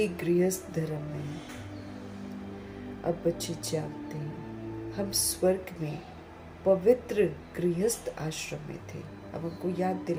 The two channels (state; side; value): identical; both; correlation 1.00